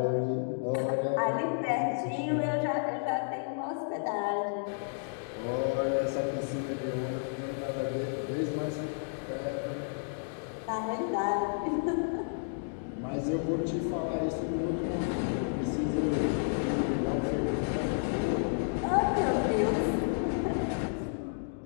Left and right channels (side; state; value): right; silent; digital silence